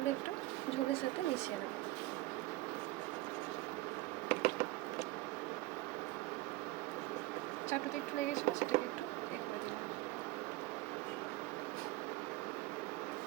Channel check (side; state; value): left; quieter; 19.0 dB